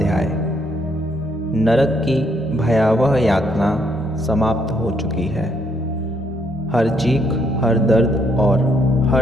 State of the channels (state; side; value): normal; both; correlation 0.71